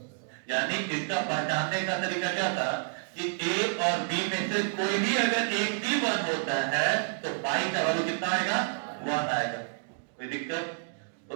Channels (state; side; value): silent; left; digital silence